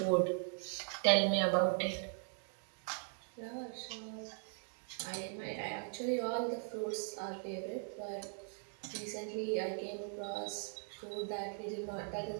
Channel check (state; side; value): silent; left; 51 dB below the other